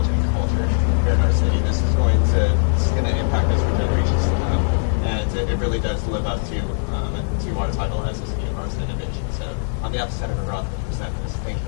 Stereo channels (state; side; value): silent; right; 65 dB below the other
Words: and culture here in our city. This is going to impact us for generations to come. And it really does live up to our title as a city of arts and innovation. So on behalf of Senator Roth, I present this. Thank you.